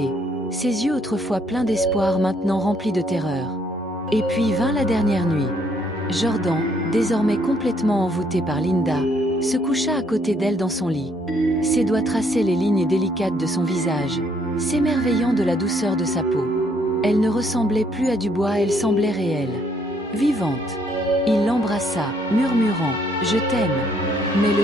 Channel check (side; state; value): both; normal; correlation 0.68